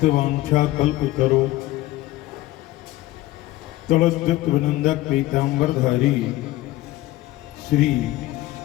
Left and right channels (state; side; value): quieter; right; 16.7 dB